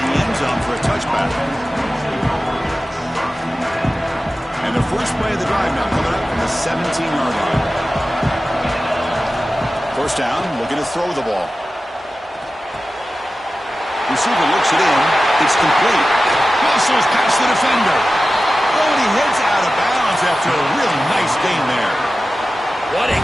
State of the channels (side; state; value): both; normal; correlation 0.95